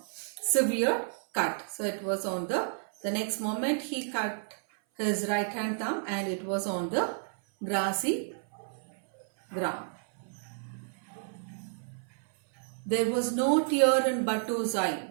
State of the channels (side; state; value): left; silent; 57 dB below the other